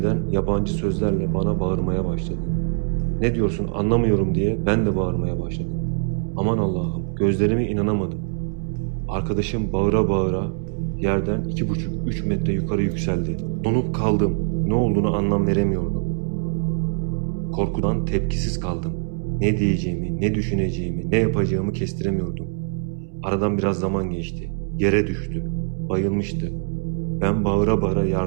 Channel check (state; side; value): silent; left; 63 dB below the other